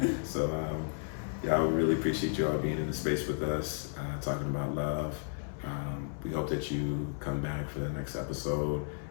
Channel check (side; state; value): right; silent; 56 dB below the other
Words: you. So, I really appreciate you all being in the space with us, talking about love. We hope that you come back for the next episode.